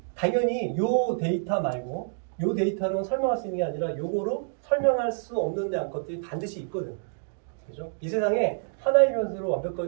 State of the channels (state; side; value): silent; left; digital silence